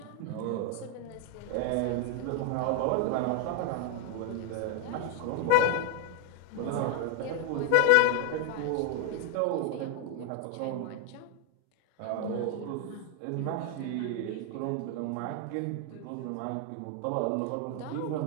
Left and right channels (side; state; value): both; different; correlation 0.01